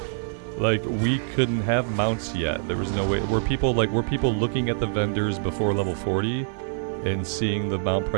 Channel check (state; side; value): silent; left; digital silence